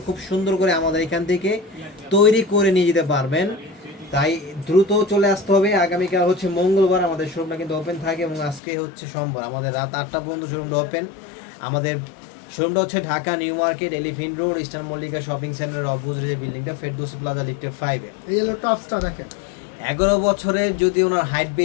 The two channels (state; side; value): drops out; right; at 8.6 s